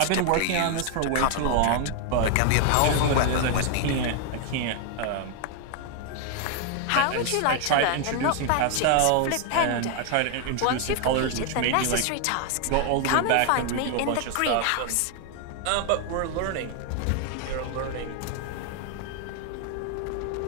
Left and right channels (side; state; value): both; different; correlation 0.00